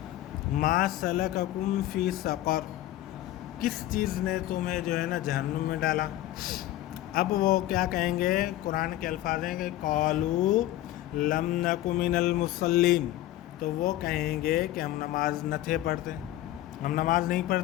मा सलककुम फ़ी सक़र, किस चीज़ ने तुम्हें जो है ना जहन्नुम में डाला। अब वो क्या कहेंगे? कुरान के अल्फाज हैं कि क़ालू लम नकु मिनल मुसल्लीन, तो वो कहेंगे कि हम नमाज न थे पढ़ते, हम नमाज नहीं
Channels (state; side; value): quieter; right; 14.6 dB